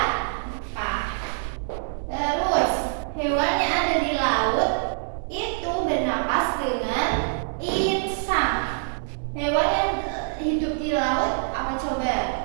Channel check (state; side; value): silent; left; digital silence